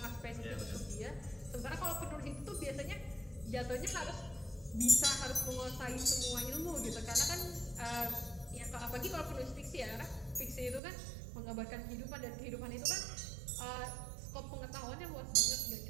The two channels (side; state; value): left; drops out; at 10.8 s